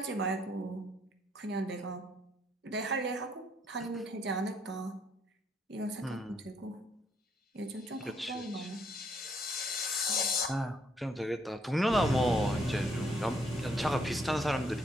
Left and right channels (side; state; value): both; normal; correlation 0.70